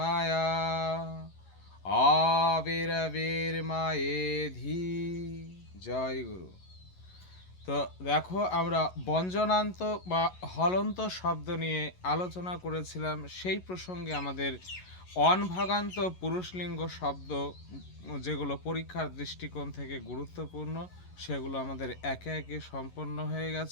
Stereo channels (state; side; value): late; right; 11 ms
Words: আবির্বির্মায়েধি। জয় গুরু। তো দেখো আমরা ব্যঞ্জনান্ত বা হলন্ত শব্দ নিয়ে আলোচনা করেছিলাম। সেই প্রসঙ্গে আমাদের অনভাগান্ত পুরুষলিঙ্গ শব্দ যেগুলো পরীক্ষার দৃষ্টিকোণ থেকে গুরুত্বপূর্ণ সেগুলো আমাদের একে একে সম্পন্ন হয়ে